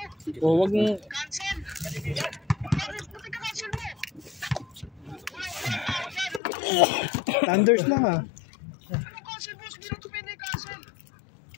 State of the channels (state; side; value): drops out; right; at 6.4 s